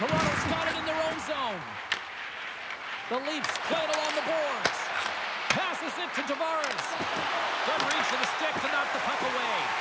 Toronto's got it in their own zone. The Leafs play it along the boards. Passes it to Tavares. Good reach for the stick to knock the puck away.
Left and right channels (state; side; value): identical; both; correlation 1.00